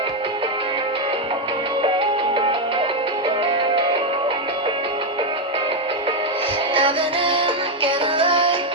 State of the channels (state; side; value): normal; both; correlation 0.04